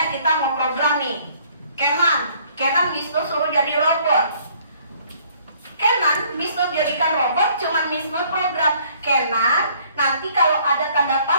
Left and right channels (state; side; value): inverted; both; correlation -0.60